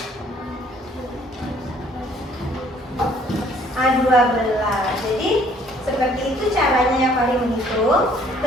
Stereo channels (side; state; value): both; normal; correlation 0.60